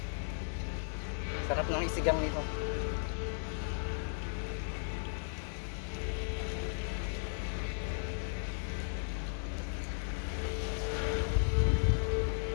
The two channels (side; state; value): right; silent; 54 dB below the other